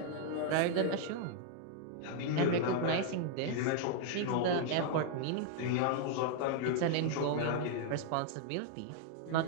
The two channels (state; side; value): different; both; correlation 0.00